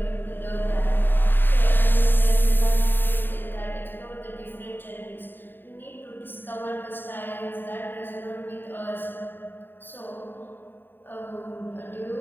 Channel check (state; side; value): late; right; 0.095 ms